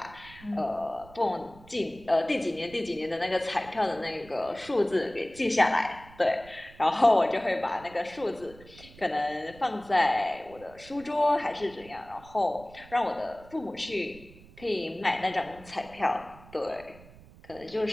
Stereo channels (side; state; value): right; noise; rumble, 21 dB below the sound